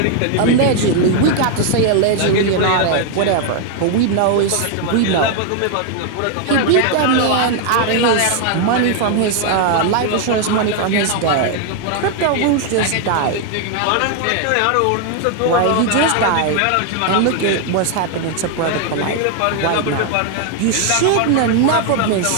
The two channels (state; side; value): different; both; correlation 0.00